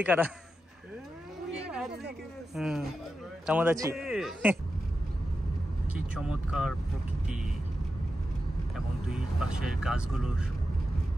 কারা। কেমন আছি? কি চমৎকার প্রকৃতি এবং দুই পাশের গাছগুলো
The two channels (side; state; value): both; normal; correlation 0.90